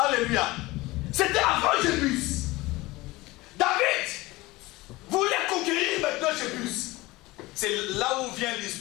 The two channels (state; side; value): quieter; right; 20.5 dB